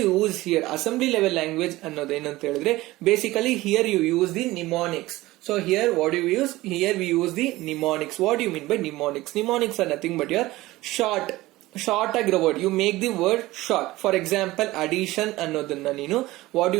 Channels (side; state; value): left; quieter; 18.3 dB